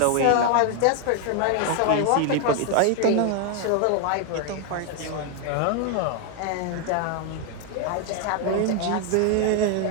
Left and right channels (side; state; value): both; different; correlation 0.00